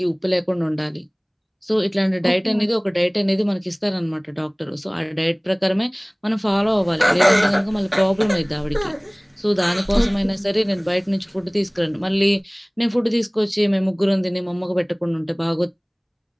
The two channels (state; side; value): identical; both; correlation 1.00